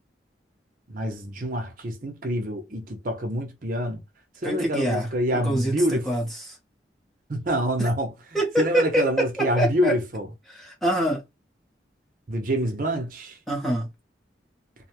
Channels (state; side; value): normal; both; correlation 0.57